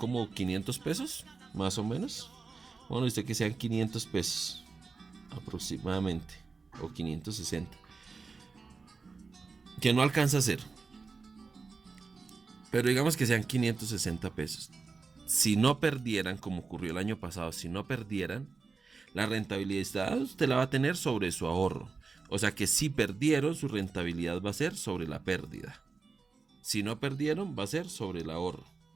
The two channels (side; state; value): left; quieter; 4.5 dB